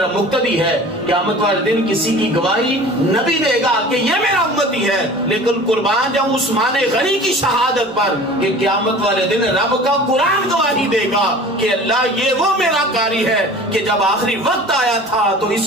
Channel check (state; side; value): normal; both; correlation 0.41